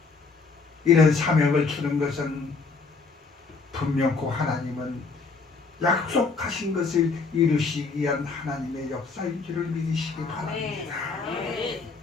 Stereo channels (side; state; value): right; quieter; 4.5 dB